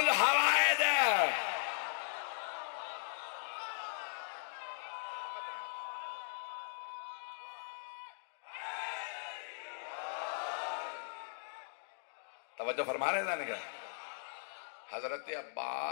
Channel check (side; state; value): right; silent; digital silence